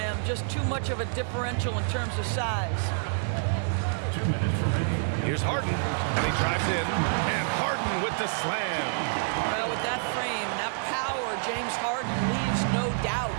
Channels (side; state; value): left; silent; 59 dB below the other